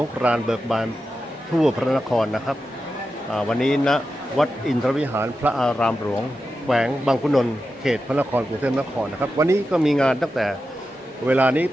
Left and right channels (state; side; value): normal; both; correlation 0.90